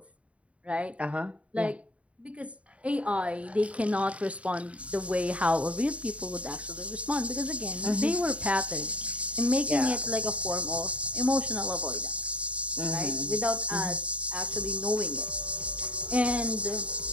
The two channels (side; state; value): left; late; 0.064 ms